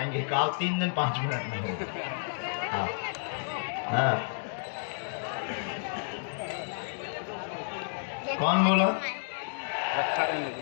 कहा 3 दिन 5 मिनट में होगा। हाँ हाँ। कौन बोला?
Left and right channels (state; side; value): silent; right; digital silence